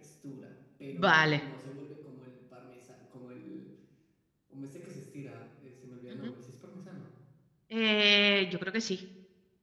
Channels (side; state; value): both; identical; correlation 1.00